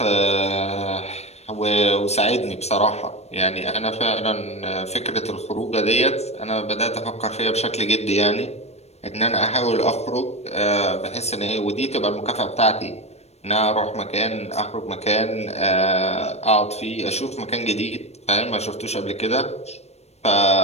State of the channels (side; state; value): right; late; 0.31 ms